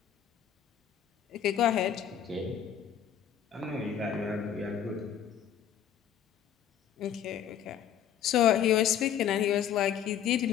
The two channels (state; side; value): quieter; right; 9.5 dB